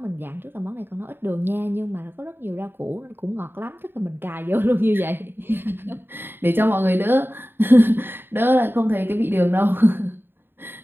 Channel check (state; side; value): late; left; 0.10 ms